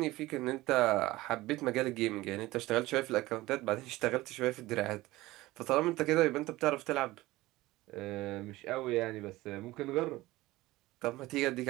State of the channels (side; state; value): left; quieter; 18.6 dB